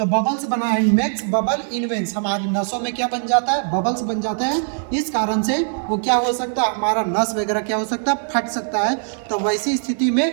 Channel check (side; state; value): left; silent; 65 dB below the other